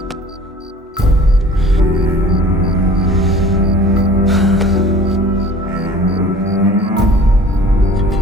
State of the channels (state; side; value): normal; both; correlation 0.46